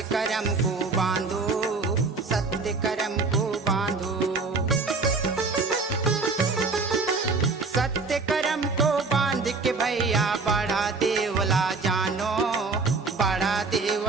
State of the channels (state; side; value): quieter; left; 4.0 dB